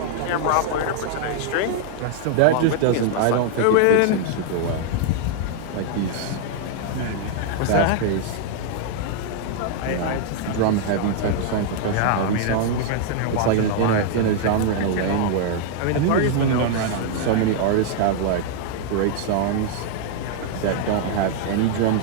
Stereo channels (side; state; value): both; different; correlation 0.00